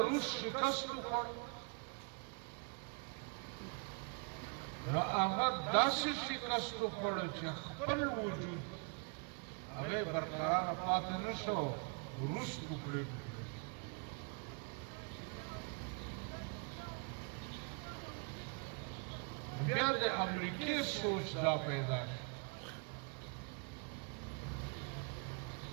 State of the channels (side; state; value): left; quieter; 35.0 dB